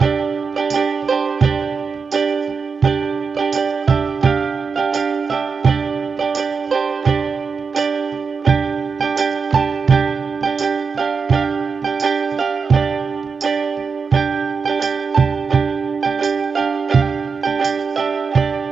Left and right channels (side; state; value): left; quieter; 5.2 dB